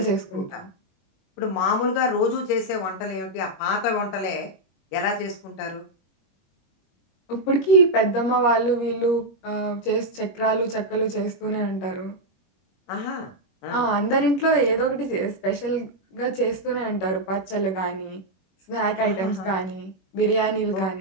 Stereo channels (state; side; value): late; right; 21 ms